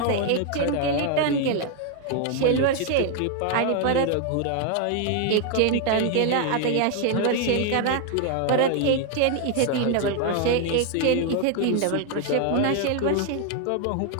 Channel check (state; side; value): different; both; correlation 0.00